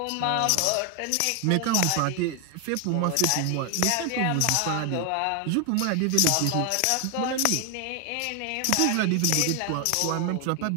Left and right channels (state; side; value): different; both; correlation 0.01